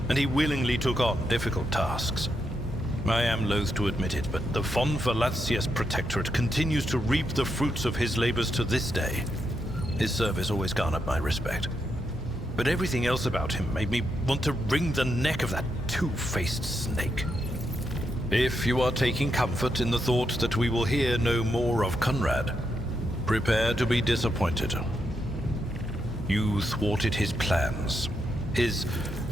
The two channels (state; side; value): normal; both; correlation 0.82